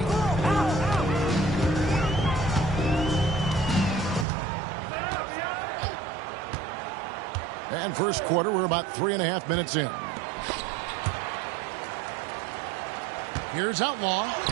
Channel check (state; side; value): drops out; left; at 4.2 s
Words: And first quarter, we're about 3.5 minutes in. Here's Outlaw.